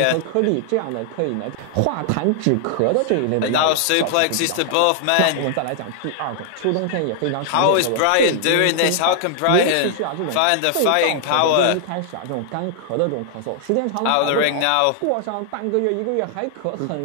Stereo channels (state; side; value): different; both; correlation 0.00